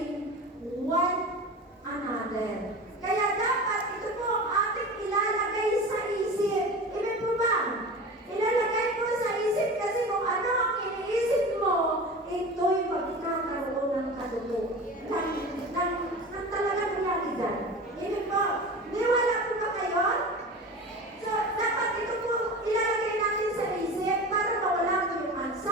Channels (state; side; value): normal; both; correlation 0.32